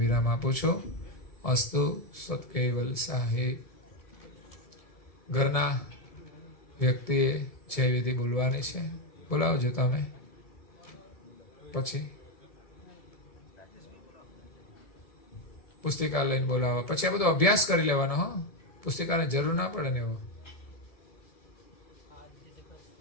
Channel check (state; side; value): late; right; 1.7 ms